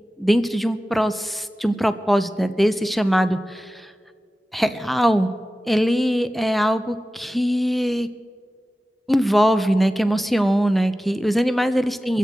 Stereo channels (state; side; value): normal; both; correlation 0.95